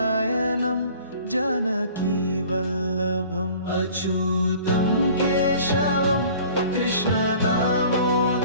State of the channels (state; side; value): inverted; both; correlation -0.48